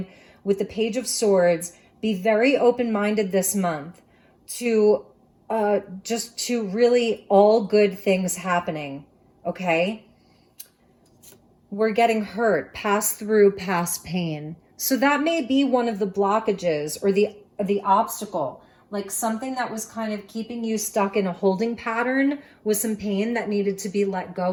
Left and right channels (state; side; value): identical; both; correlation 1.00